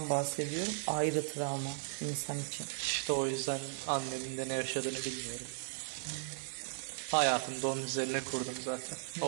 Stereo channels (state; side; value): silent; left; 53 dB below the other